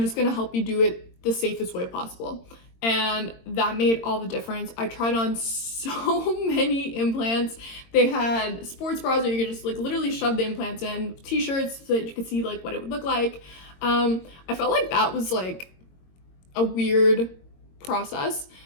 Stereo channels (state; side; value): late; right; 22 ms